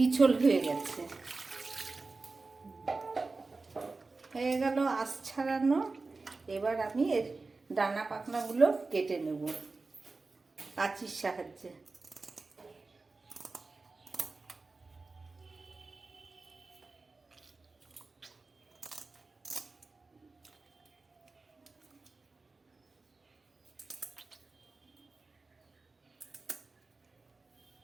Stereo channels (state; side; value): quieter; left; 3.8 dB